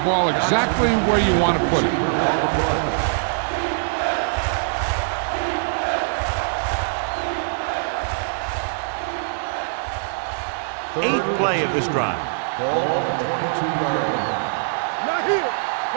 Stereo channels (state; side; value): silent; left; digital silence